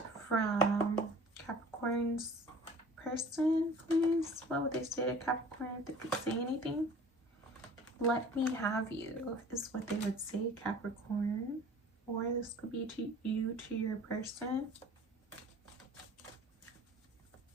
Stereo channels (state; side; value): normal; both; correlation 0.46